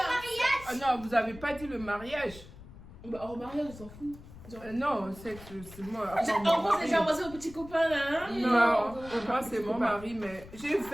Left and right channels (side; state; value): left; noise; rumble, 17 dB below the sound